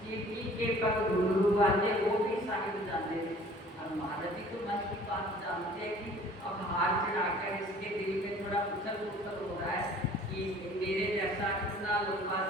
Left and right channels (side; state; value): both; normal; correlation 0.51